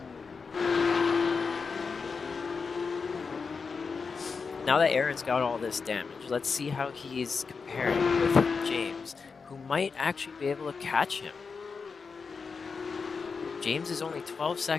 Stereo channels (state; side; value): quieter; right; 5.1 dB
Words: Now that Aaron's got all this damage, let's see how he's comparing with James, who might actually be able to catch him. James is only 12